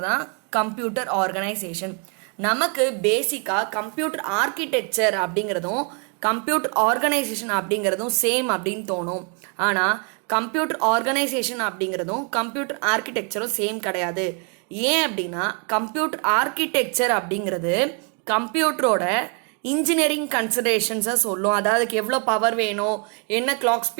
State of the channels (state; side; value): quieter; left; 37.3 dB